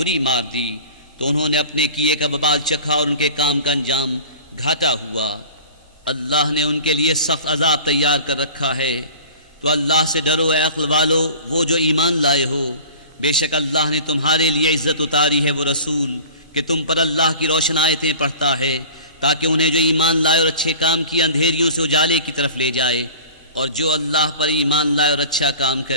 मार दी, तो उन्होंने अपने किए का बबाल चखा और उनके काम का अंजाम घाटा हुआ। अल्लाह ने उनके लिए सख्त अजाब तैयार कर रखा है। तो अल्लाह से डरो ए अक्ल वालो, वो जो ईमान लाए हो। बेशक अल्लाह ने तुम्हारे लिए इज्जत उतारी है वो रसूल कि तुम पर अल्लाह की रोशन आयतें पढ़ता है, ताकि उन्हें जो ईमान लाए और अच्छे काम किए अंधेरियों से उजाले की तरफ ले जाए। और जो अल्लाह पर ईमान लाए और अच्छा काम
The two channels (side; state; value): both; inverted; correlation -0.41